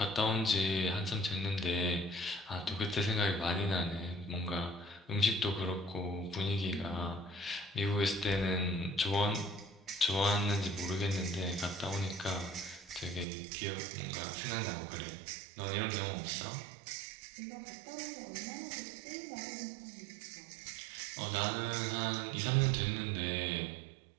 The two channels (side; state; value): left; drops out; at 13.2 s